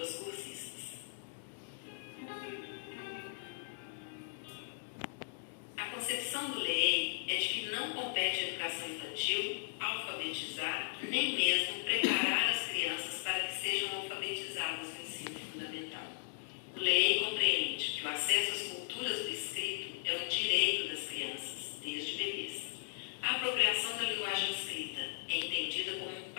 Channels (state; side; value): silent; right; digital silence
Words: às cursistas. A concepção do LEEI é de que não compete à educação infantil alfabetizar, nem mesmo preparar as crianças para que sejam alfabetizadas no ensino fundamental. O LEEI compreende que o acesso às culturas do escrito é um direito das crianças, desde bebês. A apropriação da linguagem escrita é entendida como um